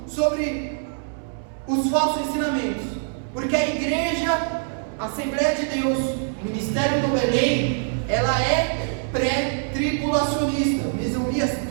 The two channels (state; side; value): silent; left; 63 dB below the other